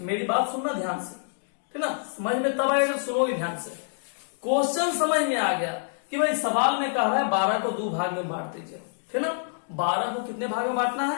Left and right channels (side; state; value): right; silent; digital silence